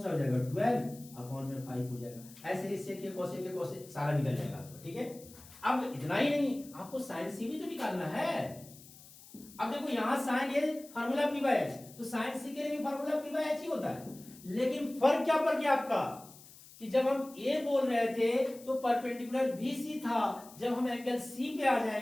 सा हो जाएगा 12 अपॉन में 5 हो जाएगा, ऐसे इससे के कोसे सारा निकल जाएगा आपको, ठीक है। अब इतना ही नहीं, आपको साइन सी भी तो निकालना है। अब देखो यहां sign A formula p by h, तो साइन सी के लिए भी फार्मूला p बाय h ही होता है, लेकिन फर्क क्या पड़ गया आपका, कि जब हम a बोल रहे थे तो परपेंडिकुलर BC था, जब हम एंगल C पे आ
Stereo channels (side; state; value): left; noise; hiss, 20 dB below the sound